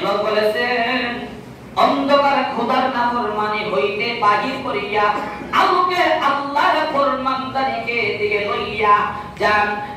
বলেছেন অন্ধকার বাহির করিয়া আলোকে আল্লাহর ফরমানদারিকে দিকে লইয়া যান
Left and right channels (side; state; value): both; identical; correlation 1.00